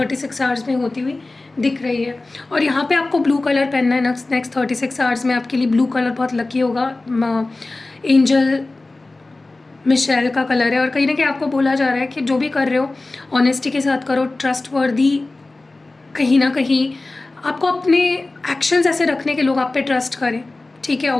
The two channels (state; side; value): quieter; right; 3.1 dB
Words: आवर्स में होती हुई दिख रही है। और यहाँ पे आपको ब्लू कलर पहनना है नेक्स्ट 36 आवर्स में। आपके लिए ब्लू कलर बहुत लकी होगा, एंजल मिशेल का कलर है। और कहीं ना कहीं आपको बोला जा रहा है कि जो भी कर रहे हो ऑनेस्टी के साथ करो, ट्रस्टवर्दी। कहीं ना कहीं आपको अपने एक्शंस ऐसे रखने के लोग आप पे ट्रस्ट करें, ठीक है।